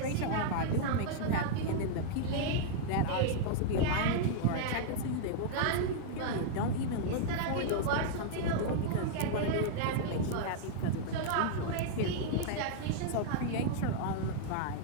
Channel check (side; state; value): both; different; correlation -0.01